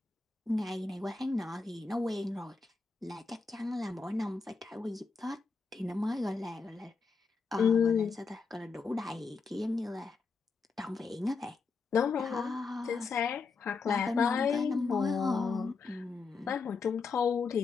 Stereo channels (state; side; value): quieter; right; 4.6 dB